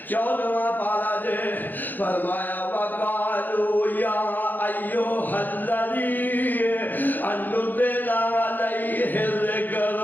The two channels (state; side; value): late; right; 0.087 ms